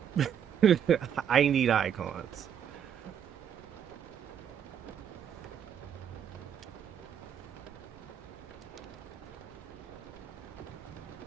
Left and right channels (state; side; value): quieter; left; 8.6 dB